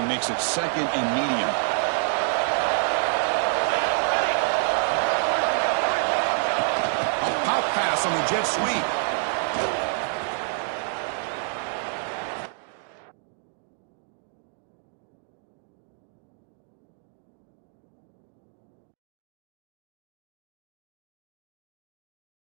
makes it 2nd and medium. A pop pass on the jet sweep.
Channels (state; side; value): silent; left; 59 dB below the other